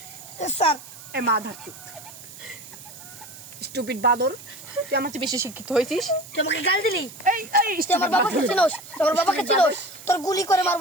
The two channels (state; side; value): noise; right; hiss, 17 dB below the sound